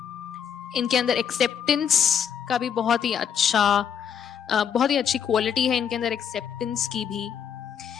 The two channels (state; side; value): quieter; right; 8.1 dB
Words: इनके अंदर एक्सेप्टेंस का भी बहुत ही अच्छी क्वालिटी है इनके अंदर, एक्सेप्टेंस की भी।